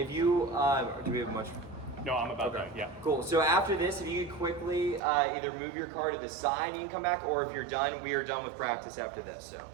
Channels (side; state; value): left; drops out; at 5.0 s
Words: you, do we have much? No, I'm about done, yeah. Cool, so after this, if you could quickly either move your car to the side and you can come back, or if you're done, we are done with practice after this, so.